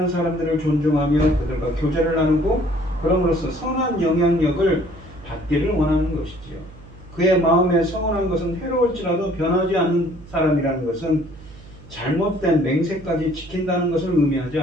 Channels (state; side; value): noise; right; hum, 19 dB below the sound